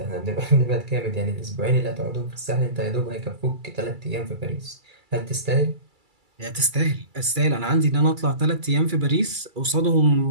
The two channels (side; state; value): left; late; 2.3 ms